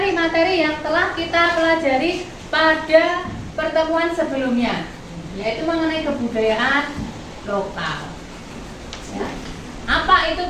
materi yang telah kita pelajari pada pertemuan sebelumnya, yaitu mengenai kebudayaan lokal. Ya. Apa itu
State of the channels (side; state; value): both; identical; correlation 1.00